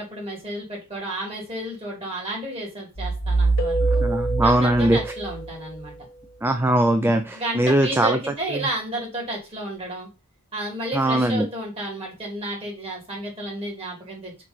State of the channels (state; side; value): normal; both; correlation 0.72